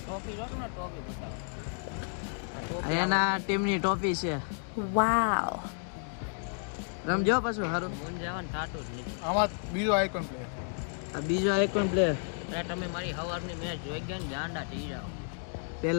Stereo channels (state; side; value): silent; right; 57 dB below the other